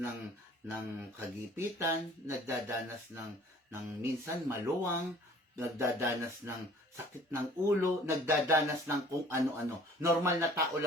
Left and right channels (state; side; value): normal; both; correlation 0.51